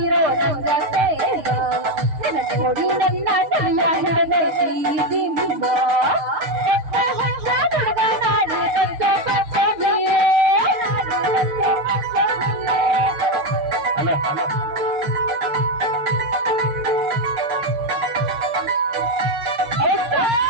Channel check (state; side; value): late; left; 6.5 ms